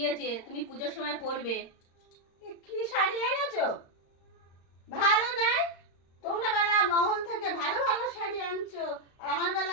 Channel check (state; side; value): late; right; 35 ms